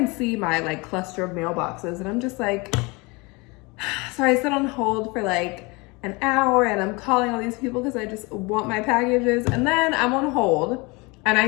see my like cluster of mailboxes, and I'm just like, so I sit on hold for like an hour, and I'm calling all these people because I just want my packages. And then I'm on hold and I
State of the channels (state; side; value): quieter; right; 26.6 dB